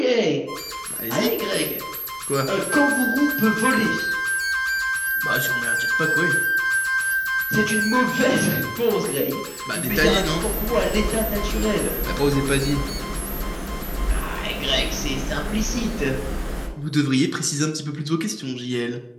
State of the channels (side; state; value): both; identical; correlation 1.00